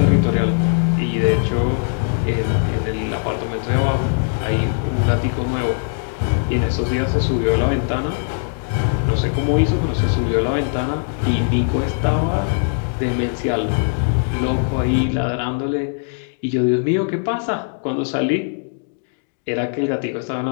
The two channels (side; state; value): right; silent; digital silence